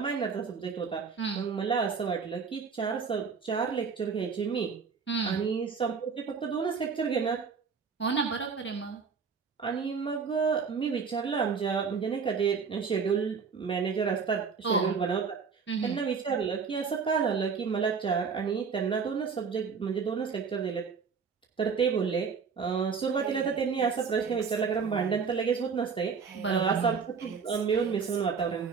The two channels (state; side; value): quieter; left; 5.7 dB